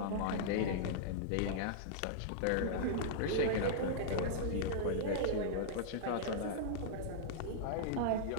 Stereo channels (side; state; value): both; different; correlation -0.02